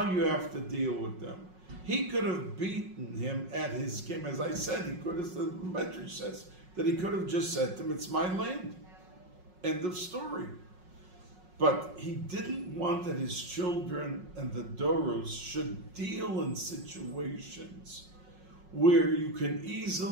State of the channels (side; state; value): left; late; 5.5 ms